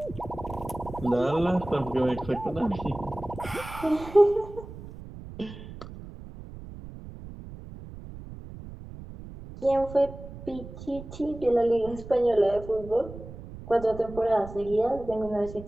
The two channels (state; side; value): noise; right; rumble, 14 dB below the sound